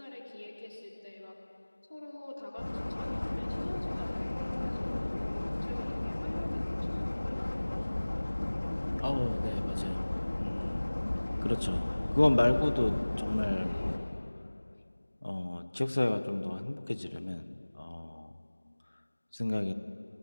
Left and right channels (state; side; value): inverted; both; correlation -1.00